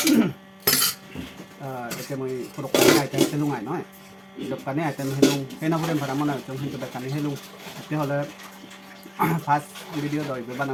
ito mo puro kanya item helung ay no eh. Ito kanya item helung, kaya na bulan para mo na itong hinto ba kanya helung. Ito hola past video do iba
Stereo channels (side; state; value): both; identical; correlation 1.00